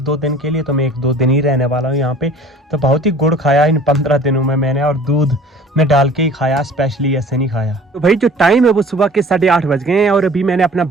दिन के लिए, तो मैं 1-2 दिन ही रहने वाला हूँ यहाँ पे। तो बहुत ही गुड़ खाया इन 15 दिनों में मैंने, और दूध में डाल के ही खाया, स्पेशली ऐसे नहीं खाया। तो भाई जो टाइम है वो सुबह के 8:30 बज गए हैं, और अभी मैंने अपना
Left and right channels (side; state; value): both; normal; correlation 0.48